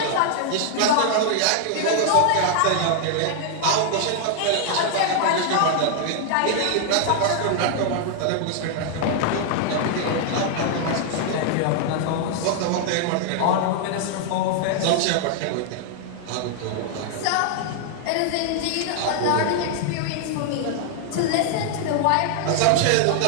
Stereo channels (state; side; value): different; both; correlation 0.00